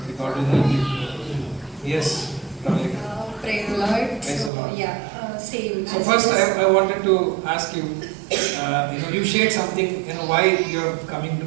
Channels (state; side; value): drops out; left; at 4.5 s